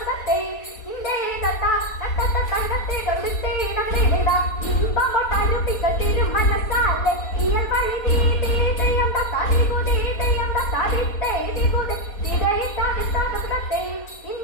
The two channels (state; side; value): late; right; 4.2 ms